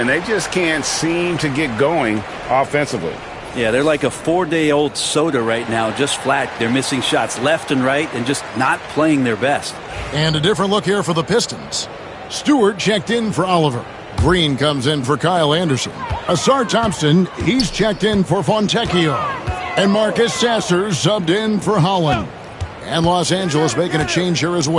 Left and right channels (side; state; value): both; identical; correlation 1.00